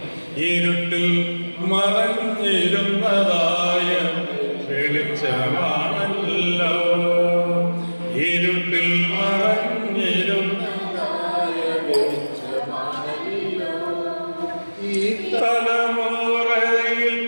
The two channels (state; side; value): inverted; both; correlation -1.00